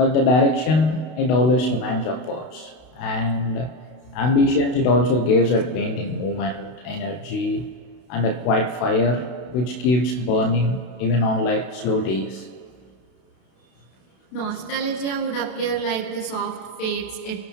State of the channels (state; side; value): late; right; 32 ms